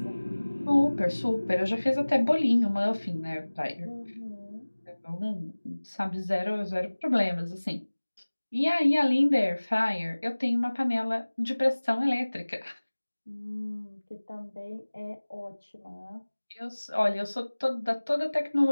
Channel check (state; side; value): inverted; both; correlation -1.00